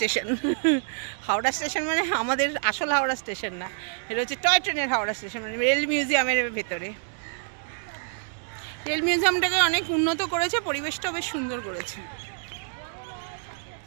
হাওড়া স্টেশন মানে আমাদের আসল হাওড়া স্টেশন না, এটা হচ্ছে টয় ট্রেনের হাওড়া স্টেশন, মানে রেল মিউজিয়ামের ভেতরে। রেল মিউজিয়ামটাকে অনেক উন্নত করেছে, পরিবেশটাও বেশ সুন্দর করেছে।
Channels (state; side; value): silent; left; digital silence